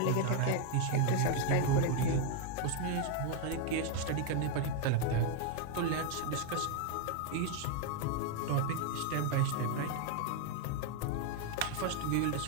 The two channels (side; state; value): both; different; correlation 0.01